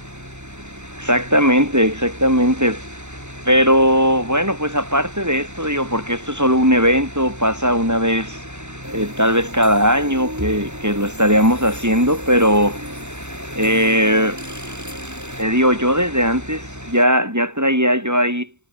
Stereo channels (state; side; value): late; left; 0.83 ms